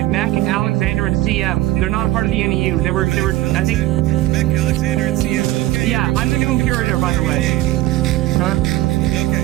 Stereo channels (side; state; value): left; quieter; 16.3 dB